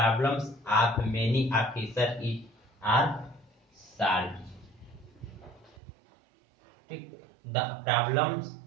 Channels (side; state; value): left; drops out; at 5.8 s